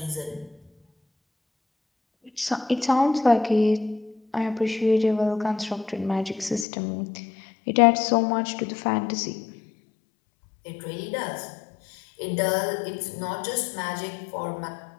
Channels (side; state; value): right; drops out; at 6.7 s